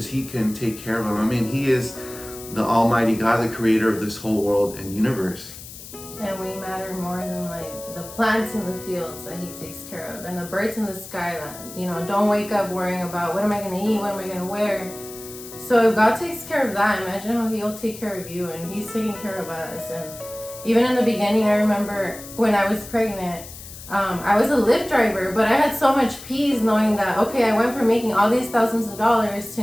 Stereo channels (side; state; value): left; noise; hiss, 15 dB below the sound